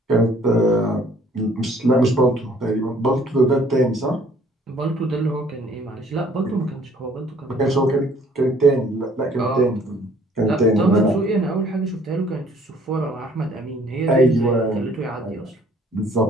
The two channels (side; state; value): both; normal; correlation 0.58